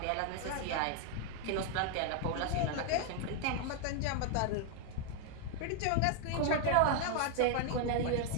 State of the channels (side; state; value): both; different; correlation 0.00